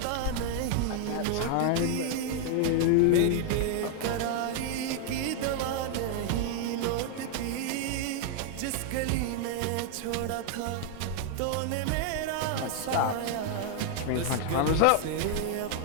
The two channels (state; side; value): different; both; correlation 0.00